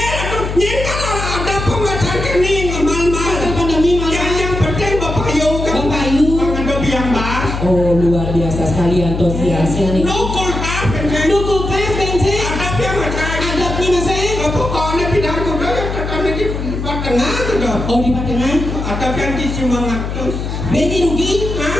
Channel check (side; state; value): left; noise; hum, 4 dB below the sound